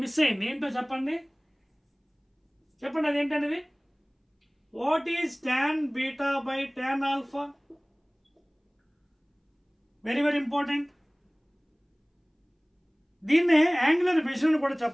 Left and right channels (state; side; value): identical; both; correlation 1.00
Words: మిస్ అయింది. ఏంటో చెప్పండి, అదేంటనేది. What is tan beta by tan alpha? Very very important. దీన్నే యాంగులర్ విజన్ కూడా